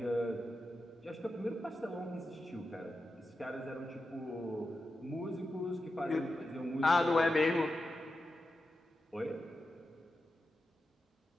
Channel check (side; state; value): both; normal; correlation 0.90